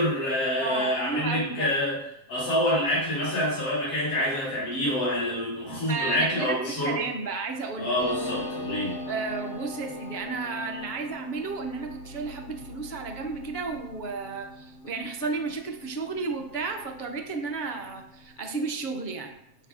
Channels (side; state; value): right; late; 7.5 ms